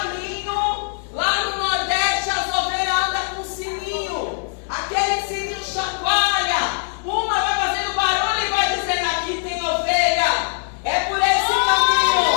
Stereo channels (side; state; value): right; silent; 65 dB below the other